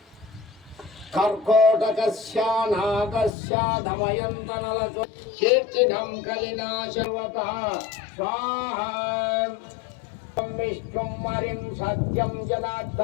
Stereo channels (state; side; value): drops out; right; at 3.3 s